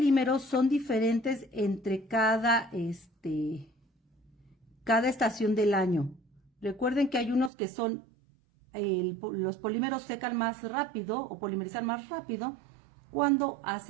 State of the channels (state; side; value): drops out; left; at 7.5 s